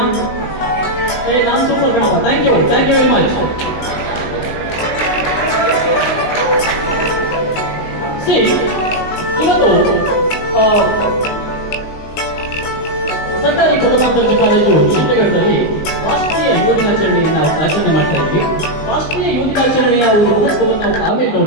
ನಾನು ಸೂಪರ್ ಕಣಪ್ಪ. Thank you very much. See ಇವತ್ತು ಸರ್ಕಾರಿ ಪ್ರಥಮ ದರ್ಜೆ ಕಾಲೇಜು ಶಿಡ್ಲಘಟ್ಟದಲ್ಲಿ ರಾಷ್ಟ್ರೀಯ ಯುವ ದಿನಾಚರಣೆಯನ್ನು ಆಚರಣೆ ಮಾಡ್ತಾ ಇದ್ವಿ. ರಾಷ್ಟ್ರೀಯ ಯುವ ದಿನಾಚರಣೆಯ ಒಂದು ಮಹತ್ವವನ್ನು ನಾವು ಆಮೇಲೆ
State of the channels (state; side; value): late; right; 19 ms